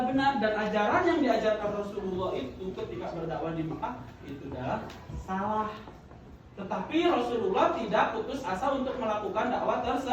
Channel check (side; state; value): both; identical; correlation 1.00